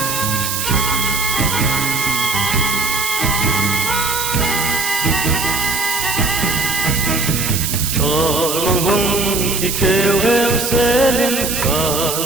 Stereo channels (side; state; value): right; noise; hiss, 2 dB below the sound